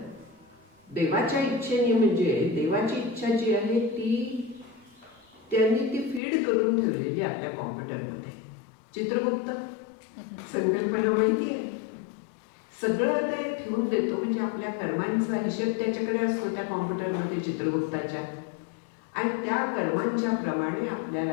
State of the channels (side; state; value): right; drops out; at 6.2 s